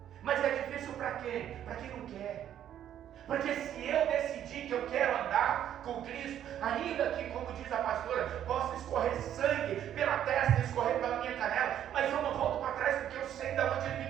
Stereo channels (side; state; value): left; quieter; 10.6 dB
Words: Mas é difícil para quem? Para quem não quer. Porque se eu decidir que eu quero andar com Cristo, ainda que, como diz a pastora, possa escorrer sangue pela testa, escorrer pela minha canela, mas eu não volto para trás, porque eu sei de onde Ele me